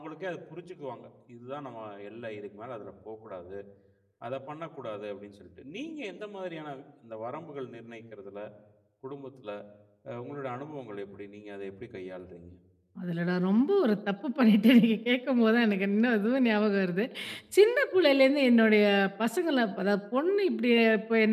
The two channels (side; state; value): both; identical; correlation 1.00